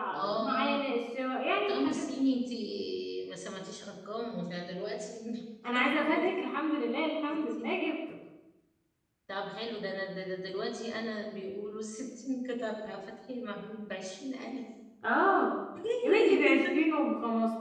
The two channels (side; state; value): both; identical; correlation 1.00